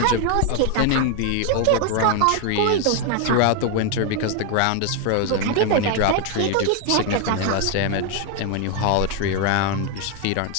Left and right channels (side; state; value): both; different; correlation 0.01